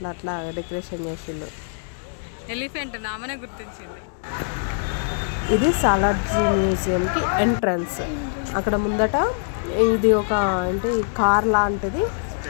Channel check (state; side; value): silent; right; digital silence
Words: అట్లా డెకరేషన్ చేసిండు. ఎలిఫెంట్ నామనే గుర్తించింది. ఇది సాలార్ మ్యూజియంకి ఎంట్రన్స్. అక్కడ ముందట ఇది ఒక అంటే కార్ లాంటిది,